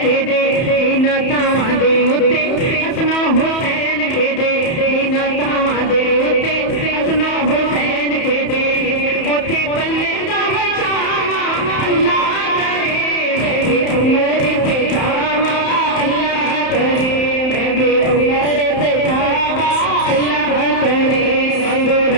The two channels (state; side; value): late; right; 31 ms